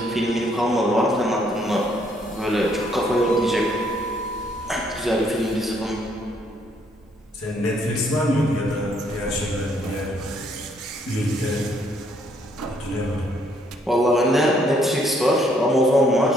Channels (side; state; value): both; normal; correlation 0.68